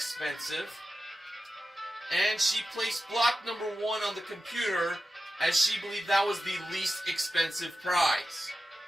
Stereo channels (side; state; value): both; normal; correlation 0.93